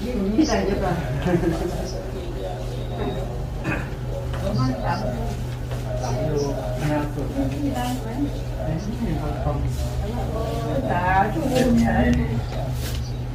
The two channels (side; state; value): both; identical; correlation 1.00